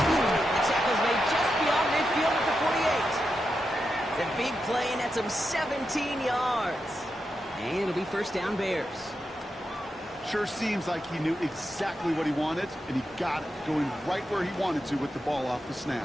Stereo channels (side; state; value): both; normal; correlation 0.87